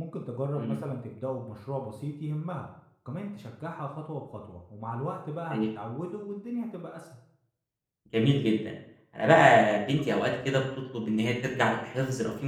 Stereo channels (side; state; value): both; identical; correlation 1.00